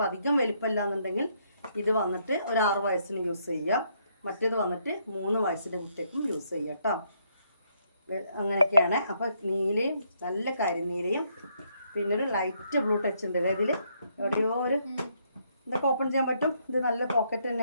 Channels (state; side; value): inverted; both; correlation -0.73